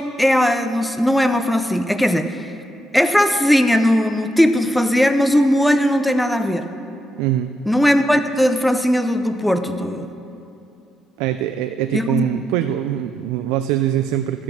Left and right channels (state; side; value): normal; both; correlation 0.82